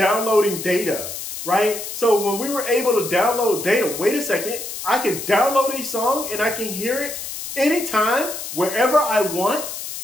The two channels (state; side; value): noise; left; hiss, 8 dB below the sound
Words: data, right? So when we were able to download data, wait a second, I can download a song and I can hear it anytime, wherever I want,